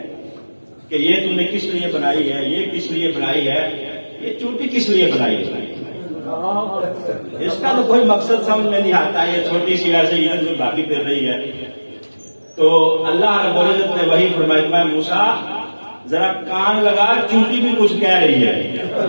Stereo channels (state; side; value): inverted; both; correlation -1.00